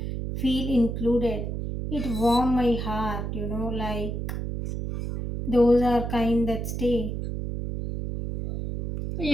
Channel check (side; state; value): right; noise; hum, 4 dB below the sound